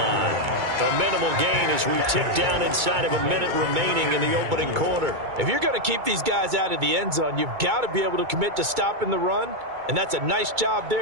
A minimal gain as we tick down inside of a minute remaining in the opening quarter. If you're going to keep these guys out of the end zone, you've got to be able to commit to stopping the run. And that's a nice job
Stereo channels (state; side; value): late; left; 2.2 ms